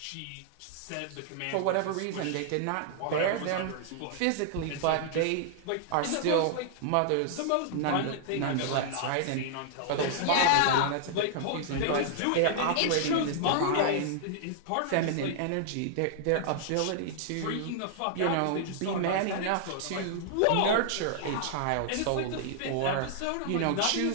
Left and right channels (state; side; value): different; both; correlation -0.01